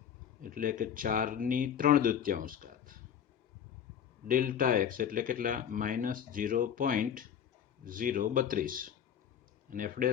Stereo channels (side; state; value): right; quieter; 8.8 dB